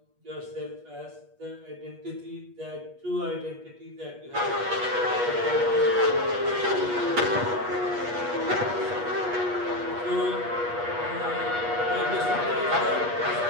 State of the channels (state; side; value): late; left; 8.3 ms